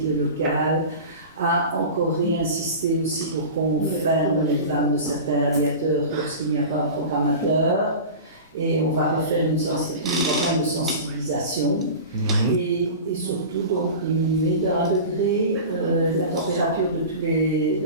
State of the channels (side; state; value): both; inverted; correlation -0.32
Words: le local, à encore réinsister aussi pour qu'on ferme les vannes de certains radiateurs lorsqu'il n'y a pas un programmateur. Et on va refaire une campagne de sensibilisation et surtout donc diminuer d'1 degré la température dans